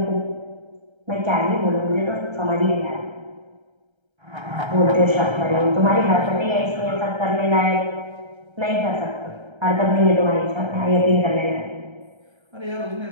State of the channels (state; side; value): late; left; 1.3 ms